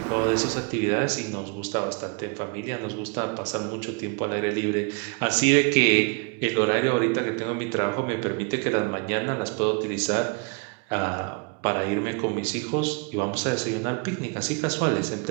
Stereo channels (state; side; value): quieter; left; 32.7 dB